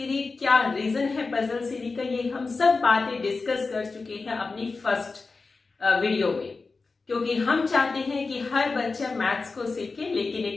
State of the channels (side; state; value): right; quieter; 4.1 dB